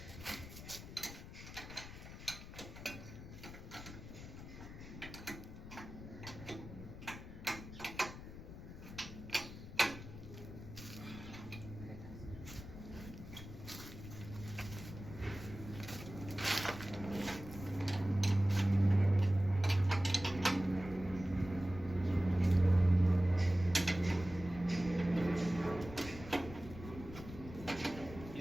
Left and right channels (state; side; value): noise; left; rumble, 12 dB below the sound